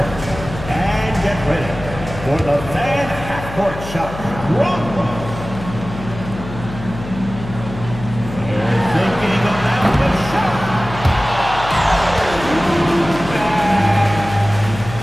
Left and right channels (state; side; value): noise; left; hum, 11 dB below the sound